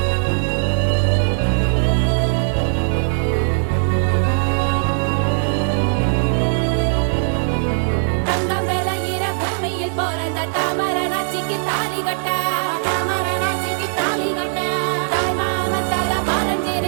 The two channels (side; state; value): left; silent; digital silence